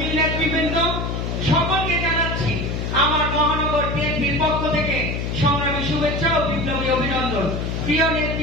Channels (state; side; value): noise; left; hum, 2 dB below the sound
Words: নেতৃবৃন্দ, সকলকে জানাচ্ছি আমার মহানগর বিএনপির পক্ষ থেকে সংগ্রামী শুভেচ্ছা ও বিপ্লবী অভিনন্দন। প্রিয়